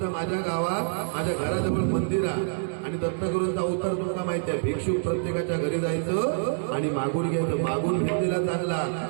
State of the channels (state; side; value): silent; left; 61 dB below the other